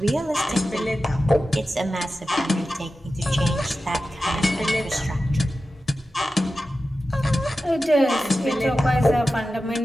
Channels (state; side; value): normal; both; correlation 0.93